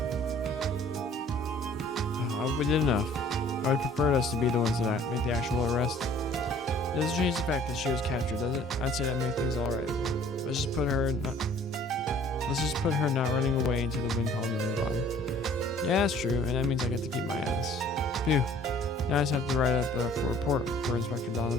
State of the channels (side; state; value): both; normal; correlation 0.54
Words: I hope we did enough. I would prefer us to be the ones that make the actual arrest. It doesn't change the fact that she was captured, does it? I'd say that makes things alright. Let's just put her not running away into the wind column and move on. Yeah, that's true, and that means I get to keep my ass. Phew. Now I just have to write up a report for Inspector